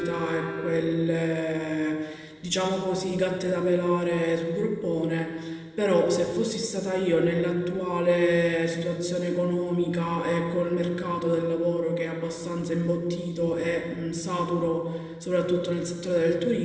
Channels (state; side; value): identical; both; correlation 1.00